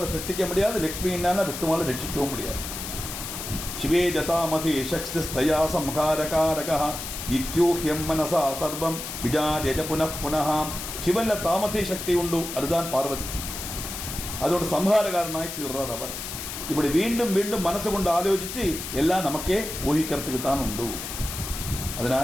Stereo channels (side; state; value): left; noise; hiss, 7 dB below the sound